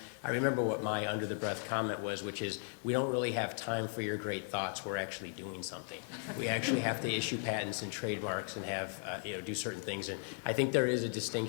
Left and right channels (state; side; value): silent; right; 53 dB below the other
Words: I remember what my under-the-breath comment was, which is, we don't really have time for your great thoughts, we're actually doing something. We actually have to issue patents and trademarks and have, do certain things, and I think there is a